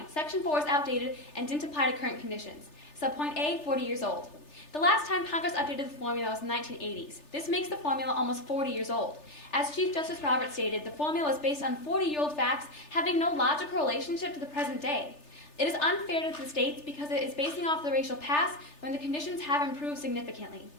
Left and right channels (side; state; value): right; late; 3.3 ms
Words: Section 4 is outdated and didn't apply to current conditions. Subpoint A, 40 years old. The last time Congress updated the formula was in the 1980s. This makes the formula almost 40 years old. As Chief Justice Roberts stated, the formula is based on 40-year-old facts having no logical relationship to the present day. It is unfair to the states because it is basing off the racial past when the conditions have improved significantly.